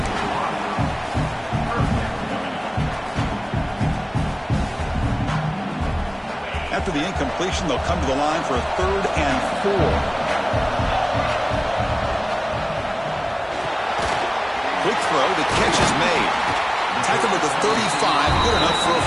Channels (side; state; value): both; identical; correlation 1.00